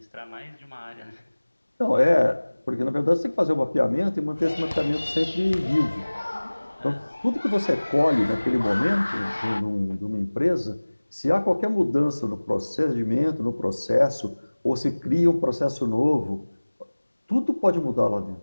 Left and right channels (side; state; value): both; inverted; correlation -1.00